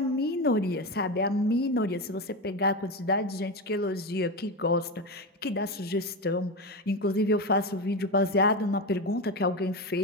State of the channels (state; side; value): normal; both; correlation 0.17